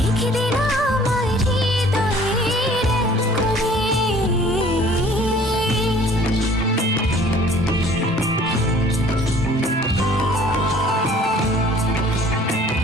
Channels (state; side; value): normal; both; correlation 0.53